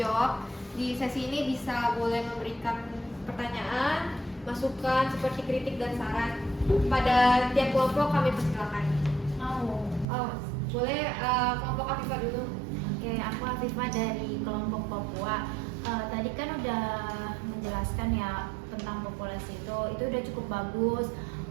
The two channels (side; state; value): left; drops out; at 10.1 s